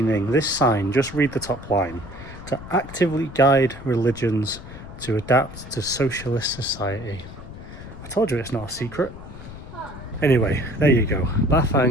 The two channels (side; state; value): left; noise; rumble, 14 dB below the sound